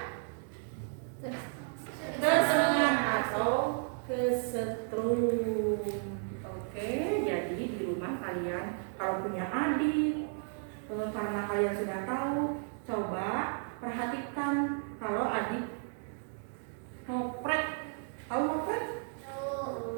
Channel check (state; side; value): silent; left; 55 dB below the other